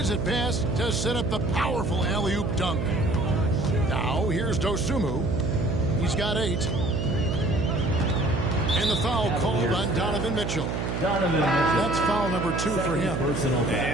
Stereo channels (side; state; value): right; noise; hum, 2 dB below the sound